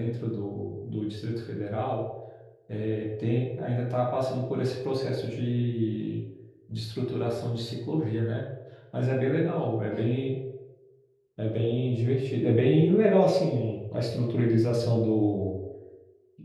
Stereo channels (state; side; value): identical; both; correlation 1.00